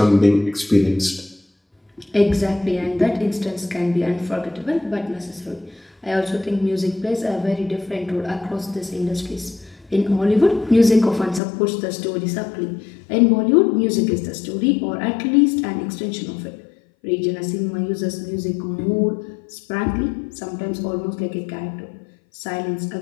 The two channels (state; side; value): drops out; right; at 11.4 s